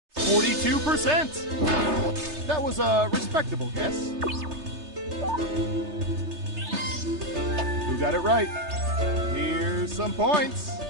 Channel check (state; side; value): late; left; 3.3 ms